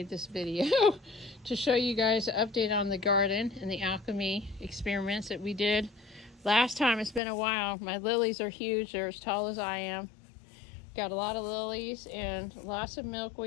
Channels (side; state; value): right; drops out; at 7.2 s